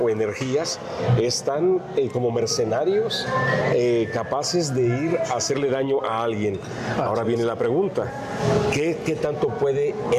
energías, están como mercenarios capaces de ir a hacerle daño a alguien. Ahora viene la pregunta: ¿qué tanto puede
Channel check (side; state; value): both; identical; correlation 1.00